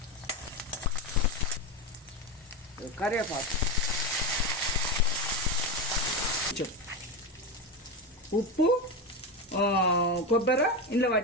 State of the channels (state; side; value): normal; both; correlation 0.16